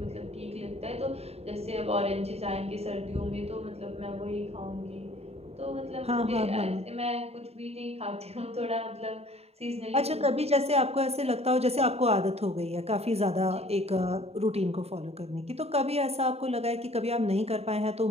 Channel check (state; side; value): late; left; 0.30 ms